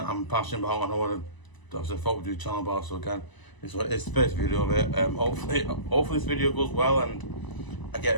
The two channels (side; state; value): right; late; 1.0 ms